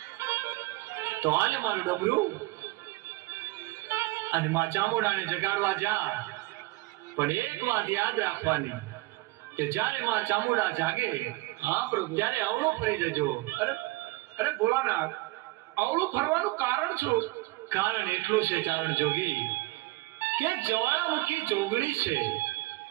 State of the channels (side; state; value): left; quieter; 21.3 dB